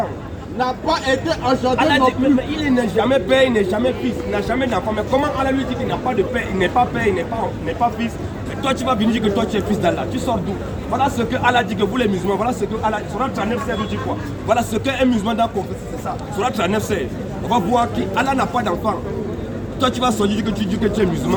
N'a pas été engendré. Allah dit, mais il n'est jamais père, il n'est jamais fils, il n'a jamais d'enfant. Mais comment Allah lui dit qu'il n'a pas de père, il n'est pas père, il n'est pas fils? Et toi tu vas venir dire que toi tu es fils d'Allah. Tu sors d'où? Voilà ce que Allah dit que vous les musulmans, voilà ce que Allah, Surah 39:16 nous dit quoi? Voilà ce qu'un musulman doit confesser, c'est ça. Surah 39:16. On va voir qu'Allah n'a pas d'enfant. Toi tu vas sortir que tu dis que tu es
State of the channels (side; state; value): both; identical; correlation 1.00